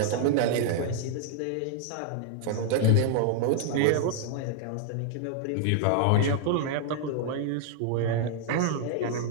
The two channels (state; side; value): different; both; correlation 0.00